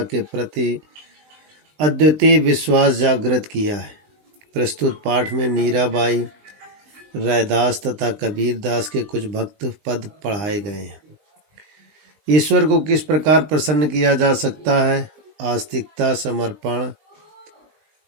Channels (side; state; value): left; late; 20 ms